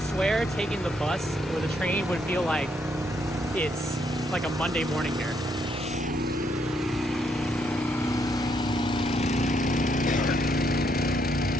swear taking the bus or the train would feel like it's like a Monday morning here.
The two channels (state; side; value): normal; both; correlation 0.74